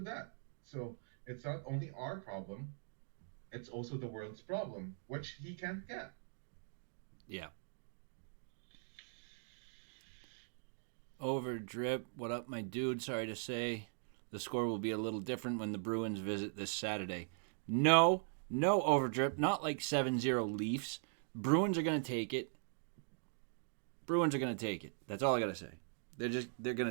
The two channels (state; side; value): silent; left; digital silence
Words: that. So it's not only our problem, it's also the world's problem, which he can't get. Yeah. Over drip. What up, my dude? Sorry to say, the score will be a little different when the Bruins visit this Saturday. No, no overdrip. Not like 7-0 Leafs. Bruins are going to take it. Bruins are going to take it. That's all I got to say. They're